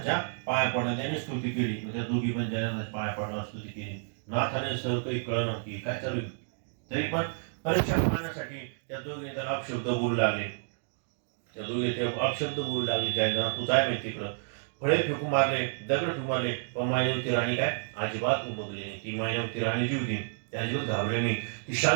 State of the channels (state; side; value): silent; left; digital silence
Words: पाया पडल्या, त्यांनी स्तुती केली. त्या दोघी पण जालिंदरनाथाच्या पाया पडणार स्तुती केली. नाथाने सर्व काही कळलं की काय चालू आहे, तरी पण परीक्षा पाहण्यासाठी त्या दोघीने त्याला अपशब्द बोलू लागले. त्या दोघे ते अपशब्द बोलू लागले, जालिंदरनाथ तू काय माहिती तिकडं. फळे फेकून मारले, दगड फेकून मारले, पण मायनवती राणी काय अजिबात उमगली नाही. ती मायनवती राणी जी होती त्या अजिबात घाबरली नाही. ती